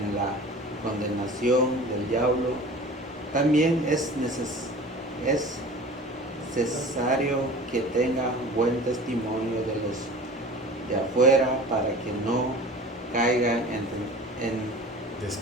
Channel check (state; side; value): normal; both; correlation 0.40